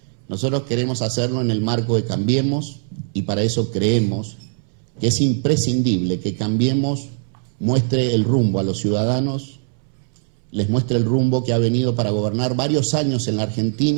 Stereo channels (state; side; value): silent; left; 65 dB below the other